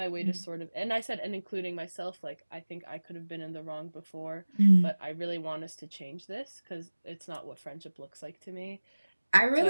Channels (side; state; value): both; inverted; correlation -1.00